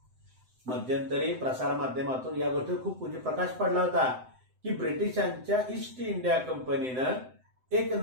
मध्यंतरी प्रसार माध्यमातून या गोष्टीवर खूप प्रकाश पडला होता की ब्रिटिशांच्या ईस्ट इंडिया कंपनीनं एक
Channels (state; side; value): late; left; 7.8 ms